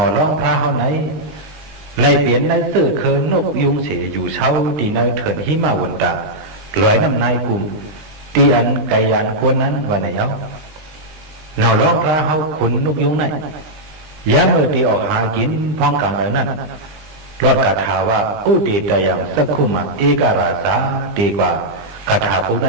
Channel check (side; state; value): left; late; 20 ms